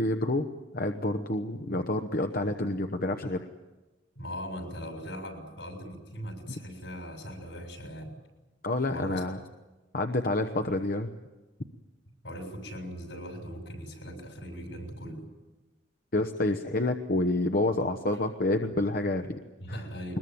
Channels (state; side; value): normal; both; correlation 0.38